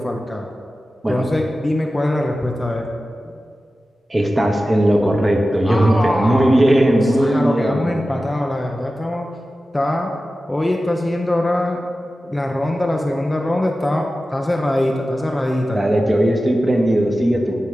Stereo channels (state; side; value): normal; both; correlation 0.94